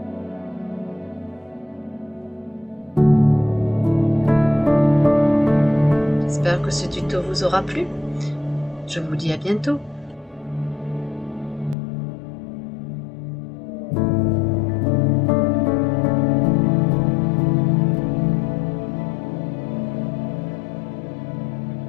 J'espère que ce tuto vous aura plu. Je vous dis à bientôt.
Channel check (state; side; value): drops out; right; at 11.8 s